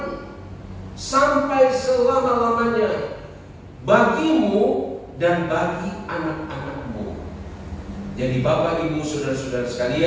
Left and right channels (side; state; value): both; identical; correlation 1.00